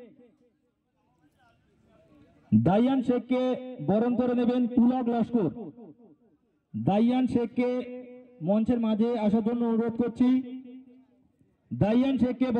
দাইয়ান শেখকে বরণ করে নেবেন পুলক লস্কর। দাইয়ান শেখকে মঞ্চের মাঝে আসার জন্য অনুরোধ করছি। দাইয়ান শেখকে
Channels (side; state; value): both; identical; correlation 1.00